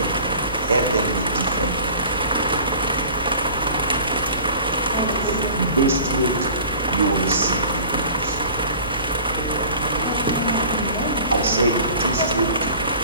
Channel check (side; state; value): both; inverted; correlation -0.43